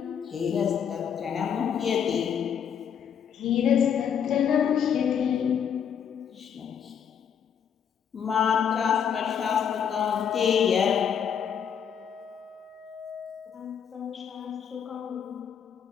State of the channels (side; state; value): right; quieter; 7.9 dB